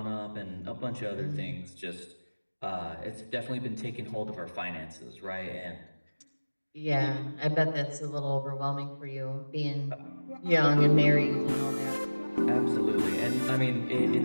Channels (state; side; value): inverted; both; correlation -1.00